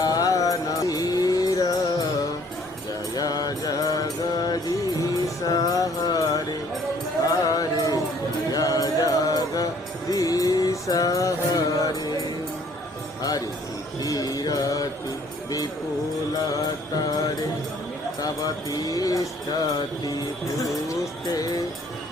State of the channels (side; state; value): both; normal; correlation 0.59